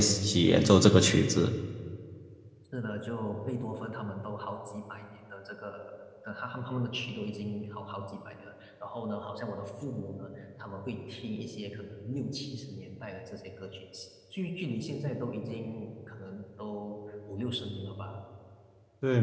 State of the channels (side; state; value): both; identical; correlation 1.00